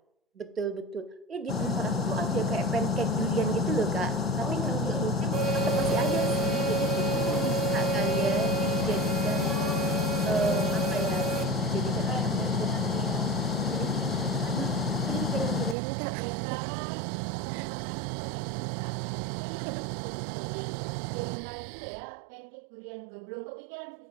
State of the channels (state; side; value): drops out; left; at 15.8 s